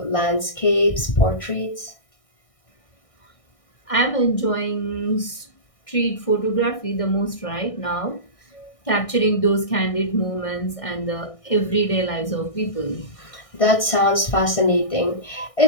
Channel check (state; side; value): late; right; 1.6 ms